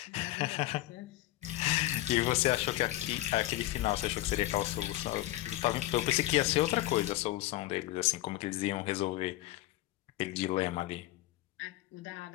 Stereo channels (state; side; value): quieter; right; 16.6 dB